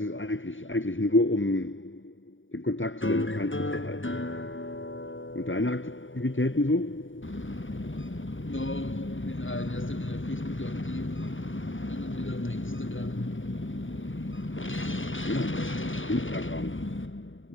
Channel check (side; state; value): right; late; 0.57 ms